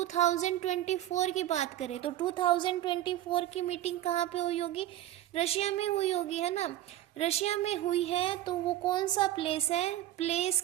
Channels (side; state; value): left; quieter; 13.7 dB